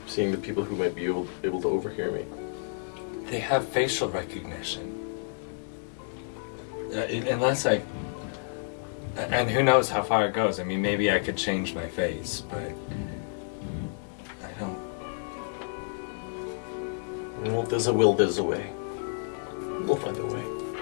seeing the people who might be able to overhear me. They have facial recognition. Unless I... And who knows how far it goes. I mean, maybe I could change my face, but... I don't... Well, if there's a will, there's a way. We'll find a way.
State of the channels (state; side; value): silent; right; digital silence